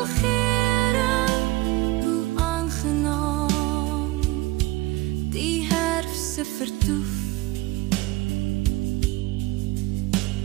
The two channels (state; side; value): quieter; left; 19.6 dB